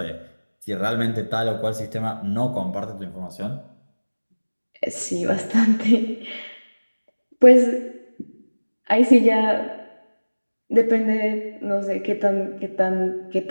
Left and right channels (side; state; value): both; inverted; correlation -1.00